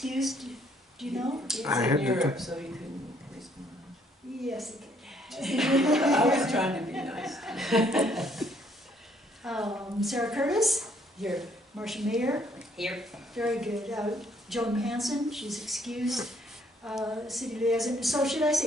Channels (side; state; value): both; normal; correlation 0.66